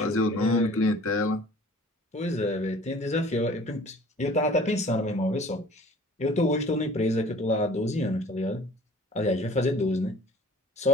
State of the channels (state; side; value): normal; both; correlation 0.49